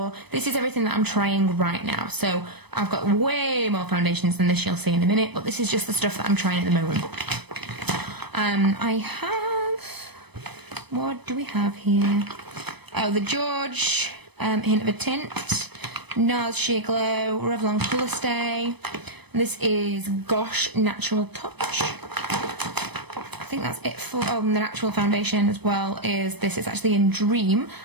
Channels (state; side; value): late; left; 0.98 ms